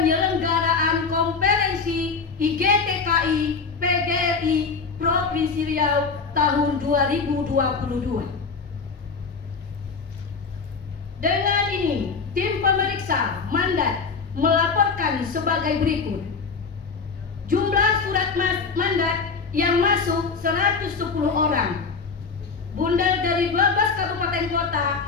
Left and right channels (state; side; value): quieter; right; 4.9 dB